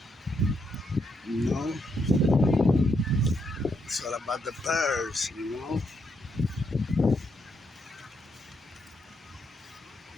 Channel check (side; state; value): both; normal; correlation 0.78